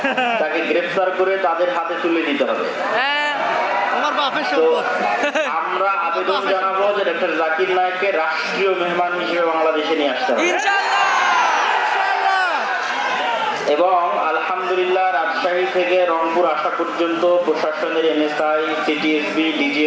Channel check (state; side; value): identical; both; correlation 1.00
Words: তাকে গ্রেফতার করে তাদের হাতে তুলে দিতে হবে। তো আমরা আবেদন জানাবো যে ডাক্তার জাকির নায়েককে রাষ্ট্রীয় মেহমান হিসেবে বাংলাদেশে নিয়ে আসতে হবে। এবং আলহামদুলিল্লাহ রাজশাহী থেকে রংপুর আসা পর্যন্ত প্রশাসনের এনএসআই, সিটিএসবি,